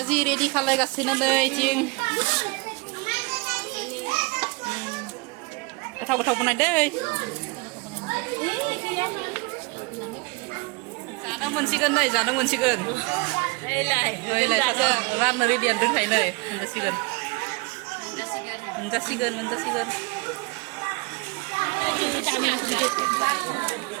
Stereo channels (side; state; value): left; quieter; 27.4 dB